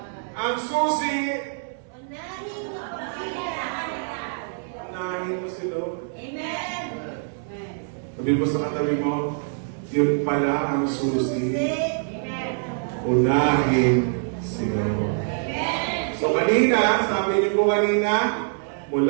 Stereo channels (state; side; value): silent; left; digital silence